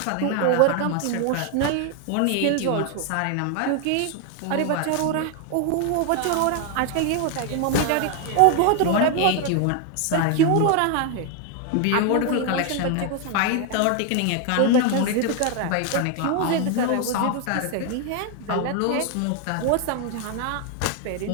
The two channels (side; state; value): both; different; correlation 0.01